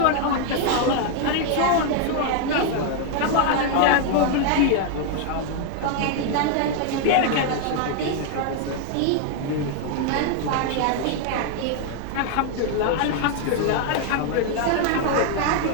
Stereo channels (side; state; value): both; different; correlation 0.00